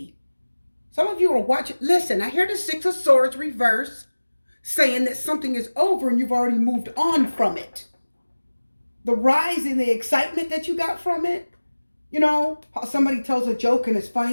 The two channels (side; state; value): both; inverted; correlation -1.00